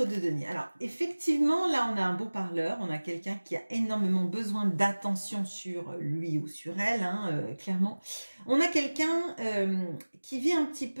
de denier. Alors effectivement, là on a un beau parleur, on a quelqu'un qui a énormément besoin d'attention sur lui ou sur elle, hein, clairement. On a quelqu'un qui vit un petit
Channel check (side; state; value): both; inverted; correlation -1.00